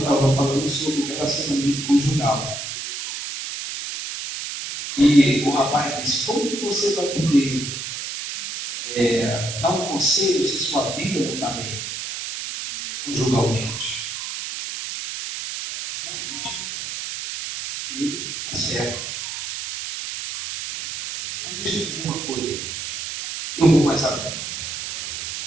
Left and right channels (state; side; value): noise; right; hiss, 6 dB below the sound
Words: falando sobre relacionamento conjugal. E o rapaz disse, como que você vai poder dar um conselho se sua vida não está bem, conjugalmente? Realmente, ele está certo. Mas deixa eu dizer uma coisa, irmãos. Eu vou mais além.